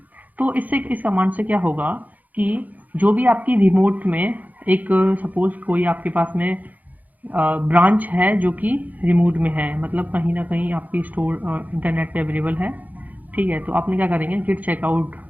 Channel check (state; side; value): late; left; 0.080 ms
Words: तो इससे इस कमांड से क्या होगा कि जो भी आपकी रिमोट में एक सपोज कोई आपके पास में ब्रांच है जो कि रिमोट में है, मतलब कहीं ना कहीं आपकी स्टोर इंटरनेट पे अवेलेबल है, ठीक है, तो आपने क्या करेंगे गिट चेकआउट